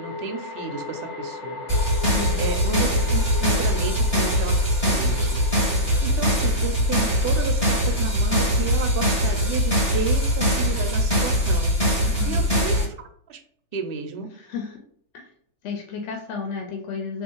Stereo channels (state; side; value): late; right; 3.4 ms